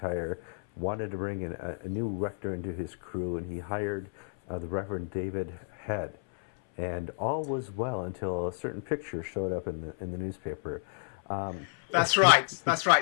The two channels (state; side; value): silent; right; 56 dB below the other